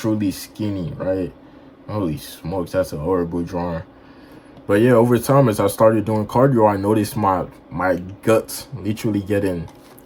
skinny, right? Holy smokes, that's a horrible drawing. But yeah, over time, as I started doing cardio, I noticed my guts literally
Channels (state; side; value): identical; both; correlation 1.00